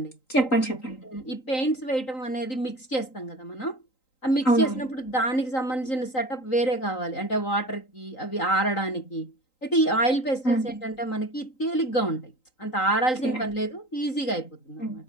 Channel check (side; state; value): right; late; 3.9 ms